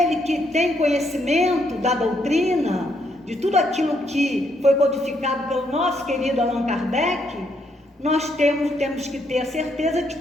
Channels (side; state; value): both; normal; correlation 0.74